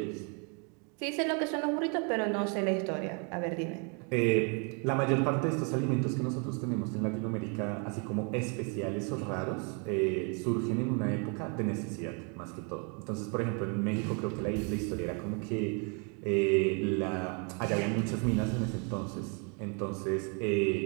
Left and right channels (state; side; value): quieter; left; 36.5 dB